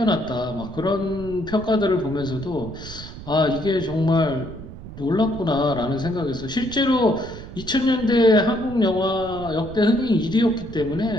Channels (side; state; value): right; noise; rumble, 13 dB below the sound